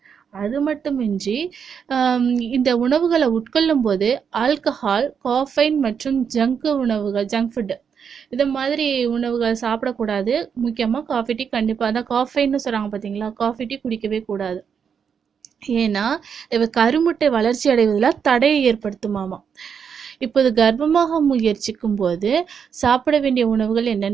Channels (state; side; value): quieter; left; 7.0 dB